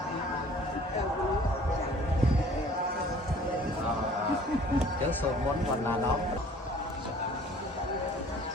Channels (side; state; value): both; normal; correlation 0.52